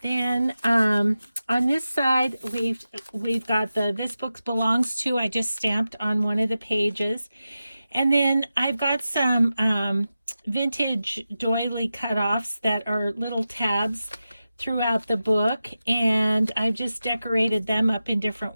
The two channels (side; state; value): both; inverted; correlation -0.92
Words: then on this side we've got the This Book Belongs To. I just stamped on one of the pages. And then I've got some vintage doily cutoffs that are little tabs throughout the book, and I've just decorated them up in